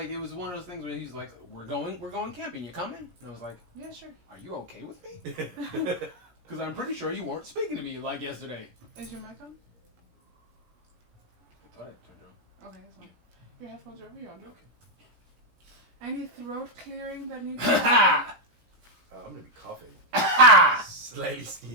it was one of those things where he's like, we're going camping. You coming? And I was like, Yeah, sure. are you okay with me? Because I'm pretty sure you weren't speaking to me like yesterday. Is your mic on? I thought I turned on. Okay, that's fine. Your headphones are over. You're on. Okay. Any throat clearing that needs to happen? I'm gonna be coughing. Ha! Slightly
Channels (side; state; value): left; late; 17 ms